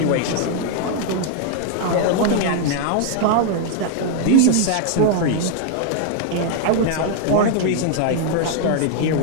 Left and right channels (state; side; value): different; both; correlation 0.00